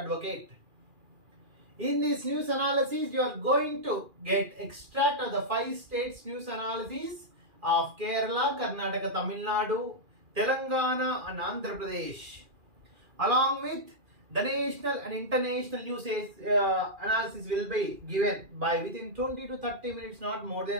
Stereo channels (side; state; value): left; late; 2.4 ms